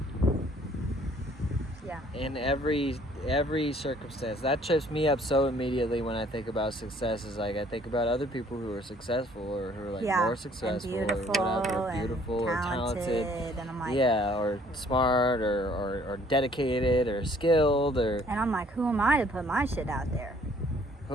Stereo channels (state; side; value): normal; both; correlation 0.59